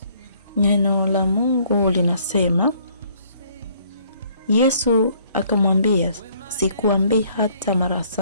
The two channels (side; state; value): both; inverted; correlation -0.62